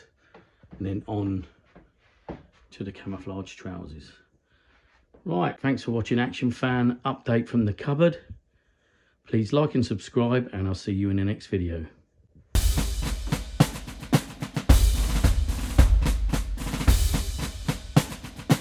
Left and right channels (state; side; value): identical; both; correlation 1.00